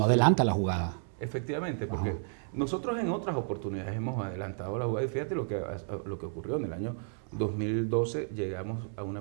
adelanta la jugada. Efectivamente, porque nosotros en otras oportunidades hemos adelantado la jugada y fíjate lo que ocurrió en el año 2012, llegamos a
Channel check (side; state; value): left; silent; 56 dB below the other